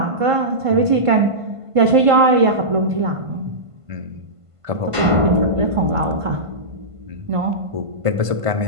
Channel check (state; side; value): late; left; 1.5 ms